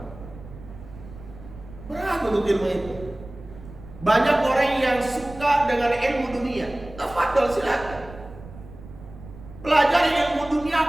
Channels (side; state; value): right; noise; rumble, 17 dB below the sound